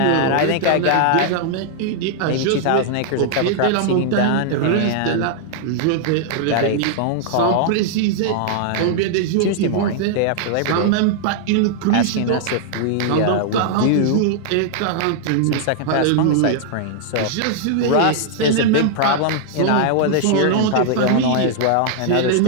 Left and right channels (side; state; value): both; different; correlation -0.01